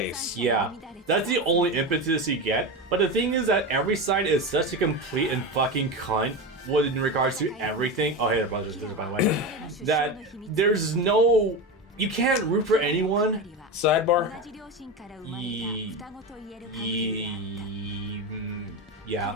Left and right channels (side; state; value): both; normal; correlation 0.20